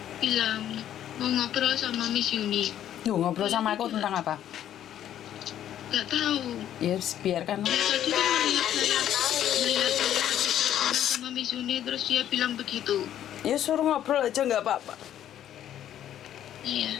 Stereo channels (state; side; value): quieter; right; 11.0 dB